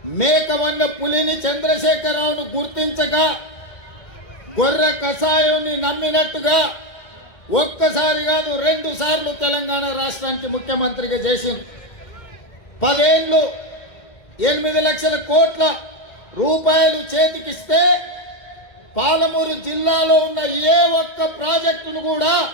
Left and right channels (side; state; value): right; late; 2.1 ms